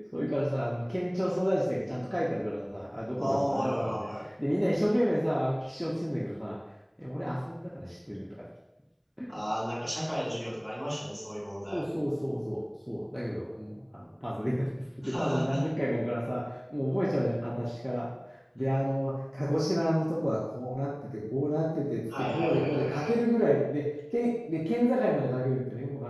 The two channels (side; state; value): both; identical; correlation 1.00